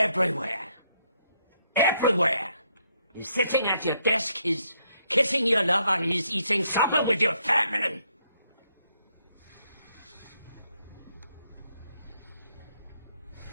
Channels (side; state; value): both; inverted; correlation -0.74